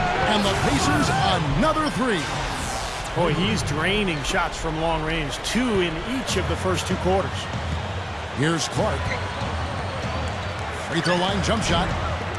And the Pacers, another 3. Boy, he's draining shots from long range. 2 in each of the first 2 quarters. Here's Clark. Free throw line jump shot.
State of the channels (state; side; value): identical; both; correlation 1.00